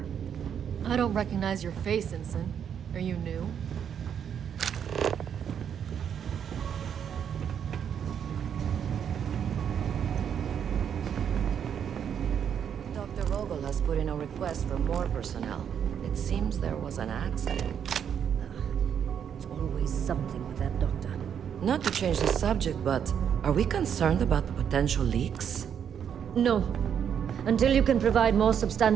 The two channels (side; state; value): left; quieter; 8.3 dB